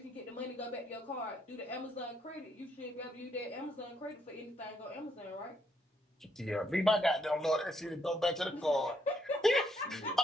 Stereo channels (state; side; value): normal; both; correlation 0.74